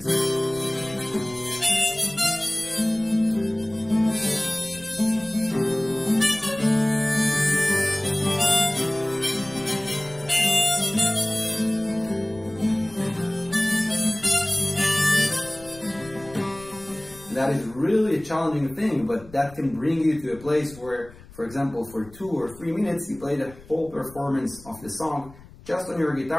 That is really a challenging thing, but that can bring you to a place where, for example, for 2 or 3 minutes, you play the whole performance of the song just on your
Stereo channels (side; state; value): left; noise; rumble, 21 dB below the sound